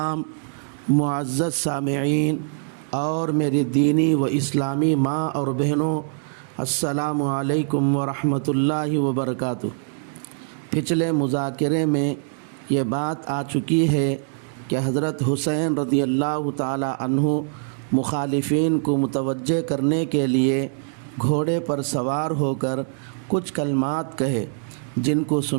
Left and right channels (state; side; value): silent; left; digital silence